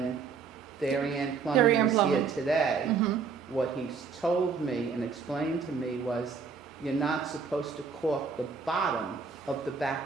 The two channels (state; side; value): quieter; left; 5.4 dB